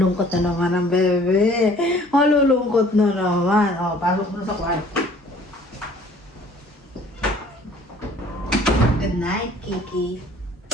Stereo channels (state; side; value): normal; both; correlation 0.54